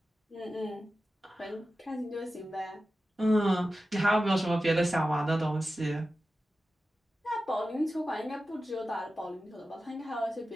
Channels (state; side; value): normal; both; correlation 0.93